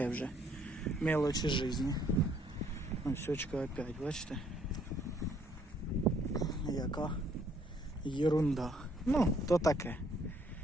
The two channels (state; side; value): normal; both; correlation 0.65